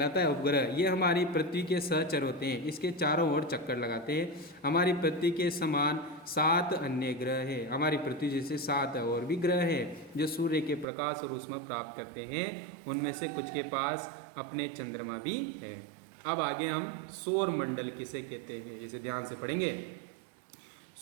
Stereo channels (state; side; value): drops out; left; at 10.9 s